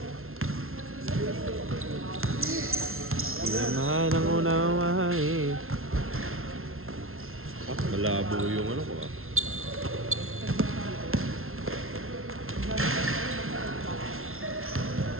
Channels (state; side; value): late; left; 0.62 ms